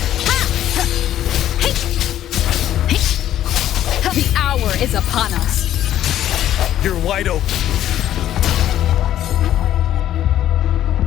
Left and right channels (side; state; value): right; quieter; 12.1 dB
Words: The hour is upon us. You're wide open.